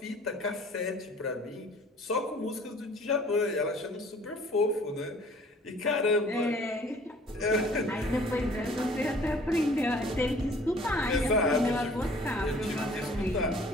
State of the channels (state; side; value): normal; both; correlation 0.53